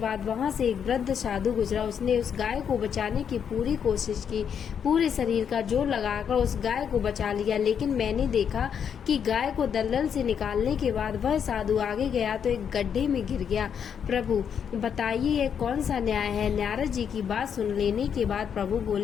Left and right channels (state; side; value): quieter; right; 7.8 dB